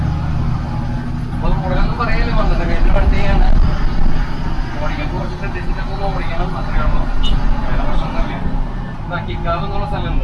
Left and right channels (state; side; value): identical; both; correlation 1.00